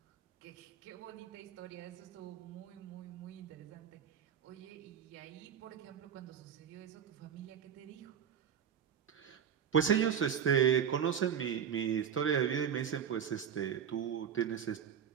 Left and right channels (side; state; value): left; quieter; 8.2 dB